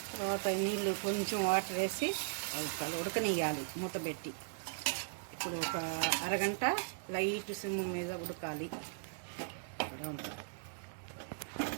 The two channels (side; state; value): left; silent; 52 dB below the other